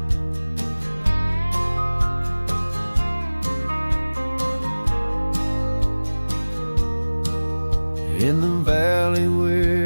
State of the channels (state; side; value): inverted; both; correlation -1.00